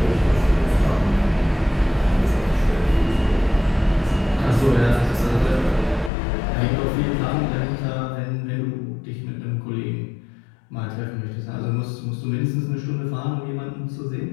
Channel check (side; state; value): right; drops out; at 6.1 s